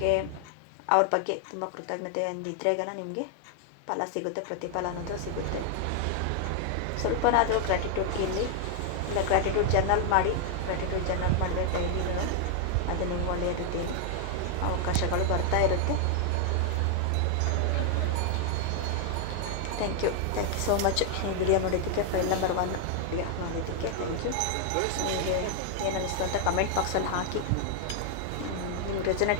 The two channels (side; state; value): both; different; correlation 0.00